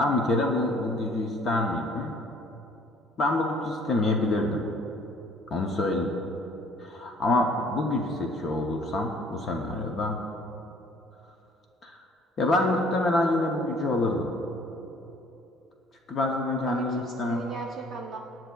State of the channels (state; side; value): normal; both; correlation 0.56